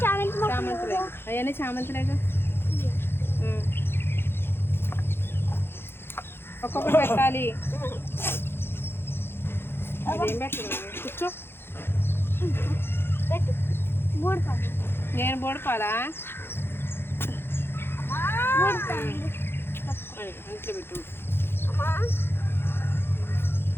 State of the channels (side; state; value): right; late; 0.11 ms